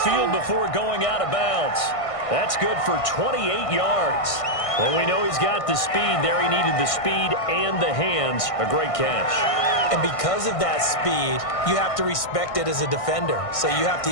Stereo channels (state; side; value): late; right; 1.6 ms